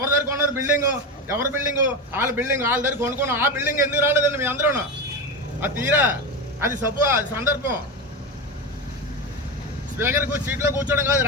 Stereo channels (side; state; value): both; normal; correlation 0.19